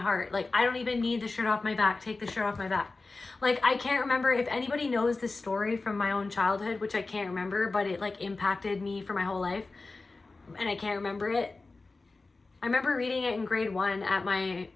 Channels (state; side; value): quieter; right; 3.6 dB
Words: Like I don't even need the shirt off my back, take the shirt off my back. Like I can't remember if anybody knows this story from my own childhood, which I can't remember, but it like impacted me for my whole life, and I can't remember it. I remember reading it in grade 1 at